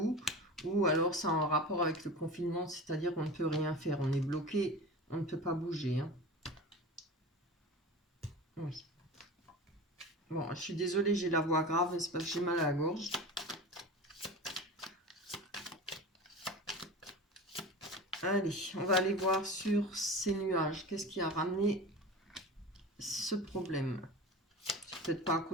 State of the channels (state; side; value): normal; both; correlation 0.32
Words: ou alors c'est en rapport avec le confinement, c'est-à-dire qu'on ne peut rien faire, on est bloqué, on ne peut pas bouger, hein. Oui. Bon, je suis désolée, j'ai la voix grave, mais c'est parce que j'ai mal à la gorge. Allez, on va aller voir sur ces nuages. Qu'est-ce qui a ramené ce problème? C'est peut-être pas à